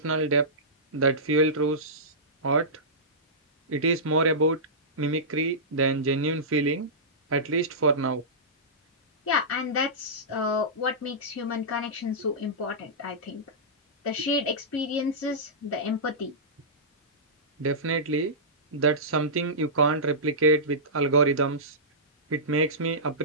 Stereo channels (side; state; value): both; normal; correlation -0.17